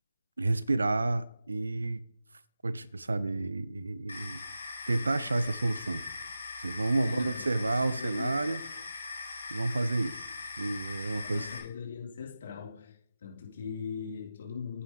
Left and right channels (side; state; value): both; inverted; correlation -0.93